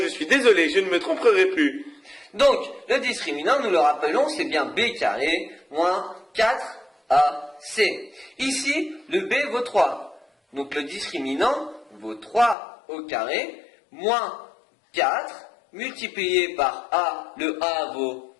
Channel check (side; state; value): right; drops out; at 12.6 s